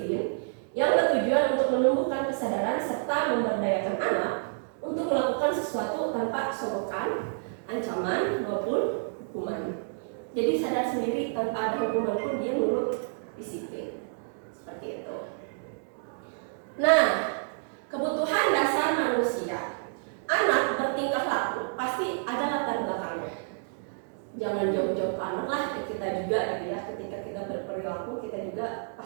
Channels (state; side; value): silent; left; digital silence